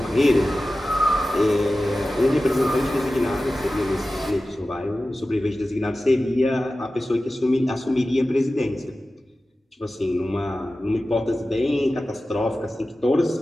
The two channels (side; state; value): both; normal; correlation 0.95